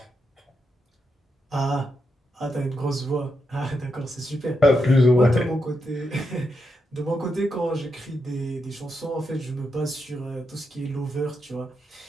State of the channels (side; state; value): both; normal; correlation 0.84